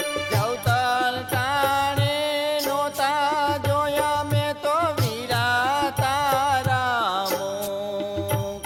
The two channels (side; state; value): both; identical; correlation 1.00